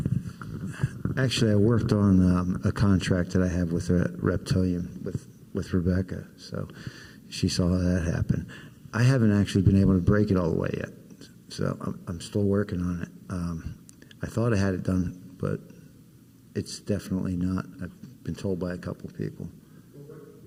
there. Actually, I worked on a contract that I have with a reptilian with Rebecca, so she saw that happen. I haven't actually been able to break it all the way yet, so I'm still working on it. I thought I had it done, but it's definitely not. I've been told by a couple of people. Well,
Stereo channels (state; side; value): identical; both; correlation 1.00